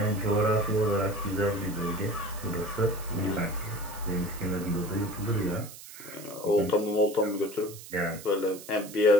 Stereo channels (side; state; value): right; noise; hiss, 15 dB below the sound